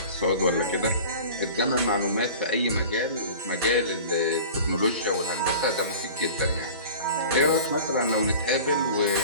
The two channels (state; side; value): inverted; both; correlation -0.40